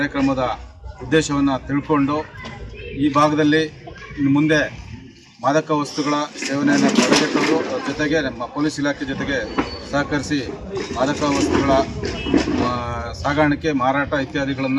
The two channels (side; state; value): both; identical; correlation 1.00